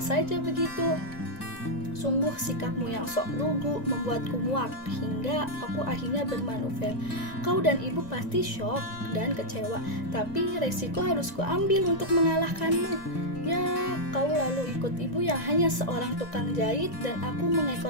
begitu. Sungguh sikapmu yang sok lugu membuatku muak hingga aku akhirnya bermanuver. Kau dan ibu pasti syok dan kecewa, tapi resiko harus kuambil untuk mengalahkanmu. Ya, kau lalu ikut ibu yang hanya seorang tukang jahit dan aku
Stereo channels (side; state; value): right; late; 1.9 ms